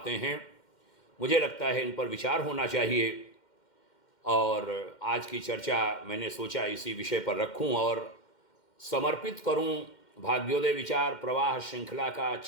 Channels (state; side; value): late; right; 2.1 ms